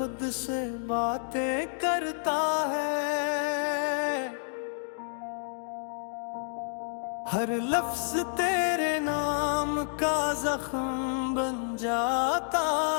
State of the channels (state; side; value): silent; right; digital silence